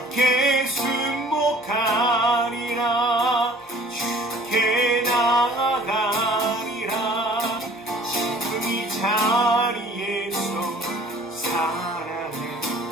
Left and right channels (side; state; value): both; normal; correlation 0.51